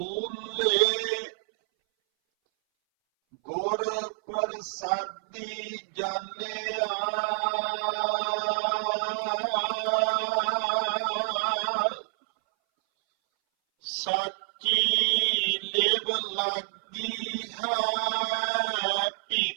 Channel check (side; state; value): left; silent; 59 dB below the other